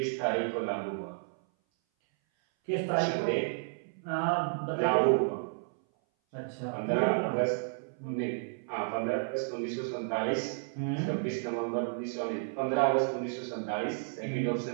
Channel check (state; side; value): silent; left; 56 dB below the other